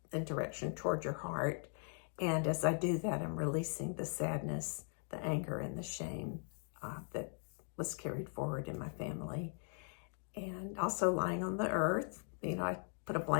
in direction toward your heart. And as I do that, I'm releasing the sadness, the anger, and the shame that was carried forward in my family. And also lying on the earth, I put a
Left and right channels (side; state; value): right; silent; 51 dB below the other